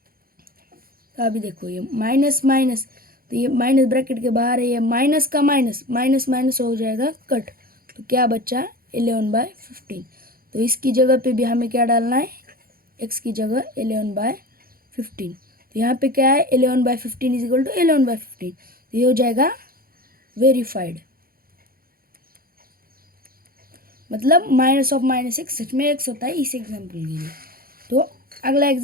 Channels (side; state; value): left; late; 0.43 ms